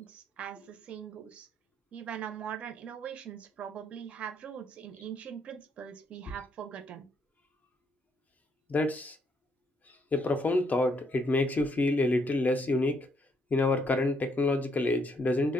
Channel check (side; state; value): both; normal; correlation 0.72